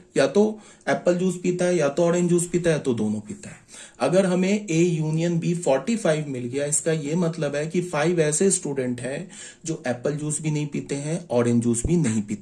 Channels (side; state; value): both; identical; correlation 1.00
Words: या तो एप्पल जूस पीता है, या तो ऑरेंज जूस पीता है, या तो दोनों पीता है। अगर हमें ए यूनियन बी 45 मिल गया, इसका यह मतलब है कि 5 ऐसे स्टूडेंट हैं जो एप्पल जूस भी नहीं पीते हैं, ऑरेंज जूस भी नहीं